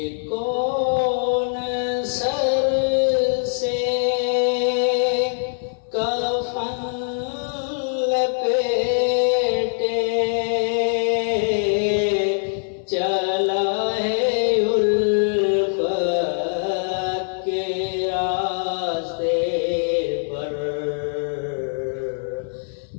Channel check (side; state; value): right; silent; 58 dB below the other